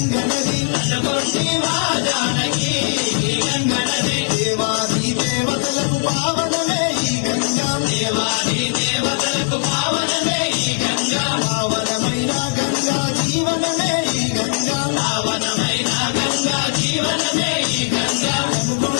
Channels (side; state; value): right; silent; digital silence